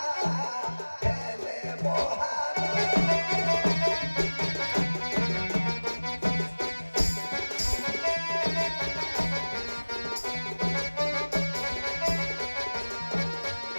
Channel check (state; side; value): inverted; both; correlation -1.00